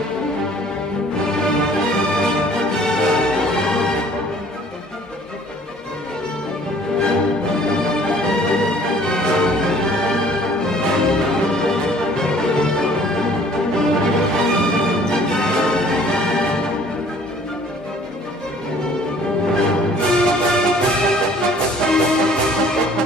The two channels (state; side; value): normal; both; correlation 0.54